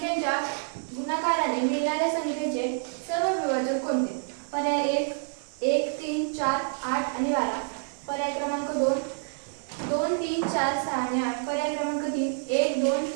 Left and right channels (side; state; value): left; silent; digital silence